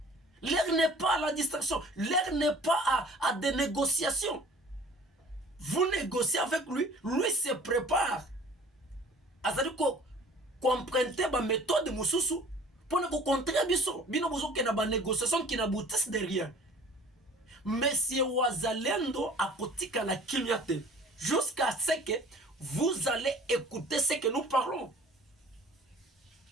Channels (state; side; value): normal; both; correlation 0.48